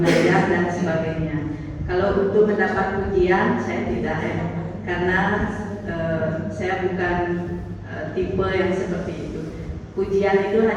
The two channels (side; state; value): both; identical; correlation 1.00